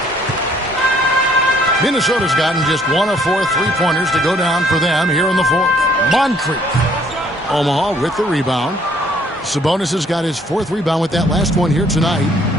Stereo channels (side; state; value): both; normal; correlation 0.62